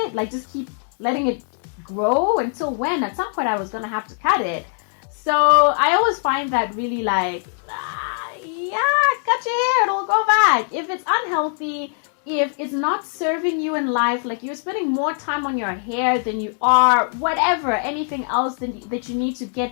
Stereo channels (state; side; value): silent; right; 55 dB below the other